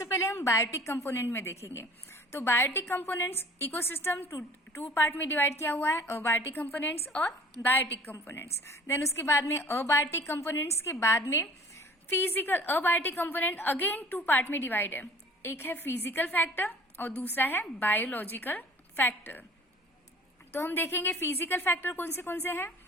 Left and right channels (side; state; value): both; normal; correlation 0.48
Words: पहले हम बायोटिक कंपोनेंट में देखेंगे। तो biotic components ecosystem two part में डिवाइड किया हुआ है, अबायोटिक कंपोनेंट्स और बायोटिक कंपोनेंट्स। देन उसके बाद में अबायोटिक कंपोनेंट्स के बाद में physical abiotic component again 2 part में डिवाइड है। एक है फिजिकल फैक्टर और दूसरा है बायोलॉजिकल फैक्टर। तो हम देखेंगे फिजिकल फैक्टर कौन से हैं।